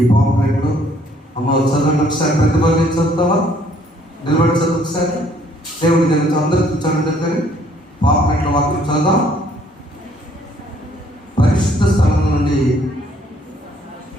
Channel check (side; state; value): both; normal; correlation 0.63